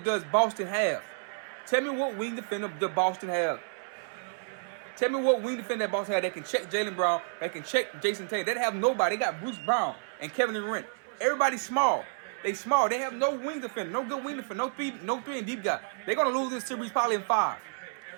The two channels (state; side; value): silent; left; 58 dB below the other